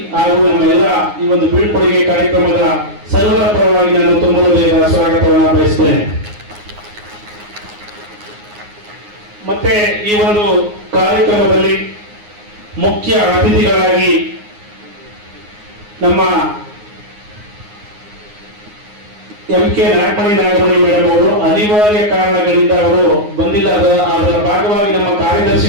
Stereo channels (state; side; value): late; left; 9.6 ms